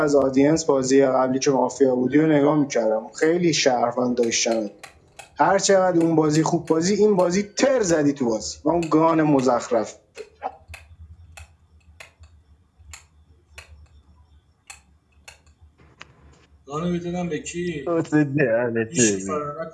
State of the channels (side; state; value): both; identical; correlation 1.00